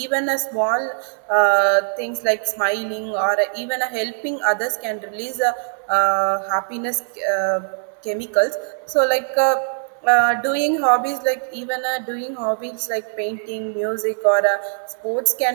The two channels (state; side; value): silent; left; digital silence